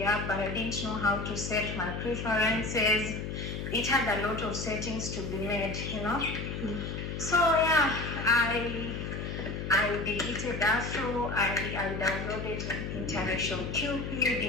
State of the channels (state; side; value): noise; left; hum, 5 dB below the sound